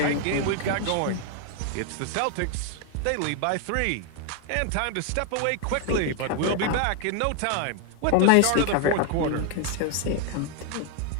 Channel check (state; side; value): different; both; correlation 0.00